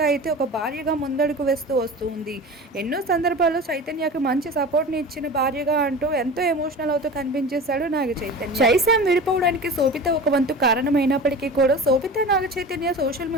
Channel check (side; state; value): both; normal; correlation 0.34